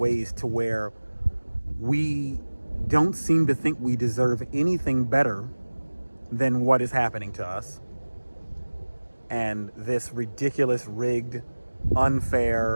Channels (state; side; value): inverted; both; correlation -1.00